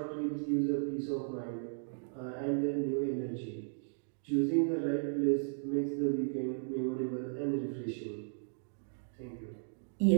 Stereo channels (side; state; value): left; silent; digital silence